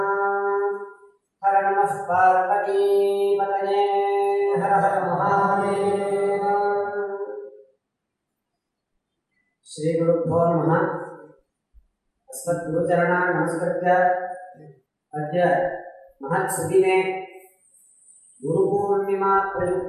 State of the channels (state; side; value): identical; both; correlation 1.00